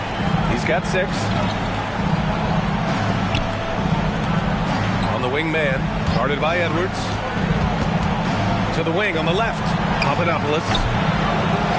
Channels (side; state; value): both; identical; correlation 1.00